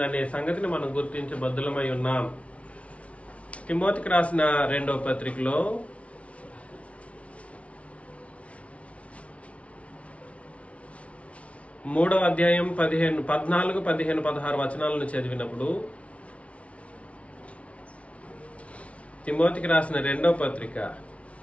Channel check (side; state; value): right; late; 0.063 ms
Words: సంగతిని మనం గుర్తించబద్దులమై ఉన్నాం. తిమోతికి రాసిన 2వ పత్రికలో 3వ అధ్యాయం 14, 15, 16 వచనాలను చదివినప్పుడు, తిమోతికి రాసిన 2వ పత్రిక